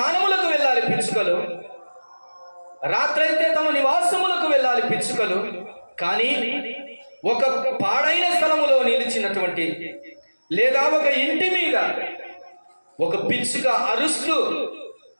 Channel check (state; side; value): inverted; both; correlation -1.00